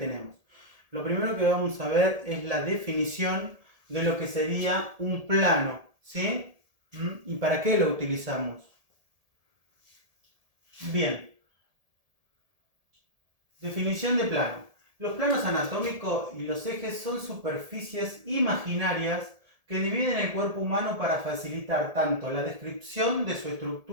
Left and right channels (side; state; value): left; late; 1.7 ms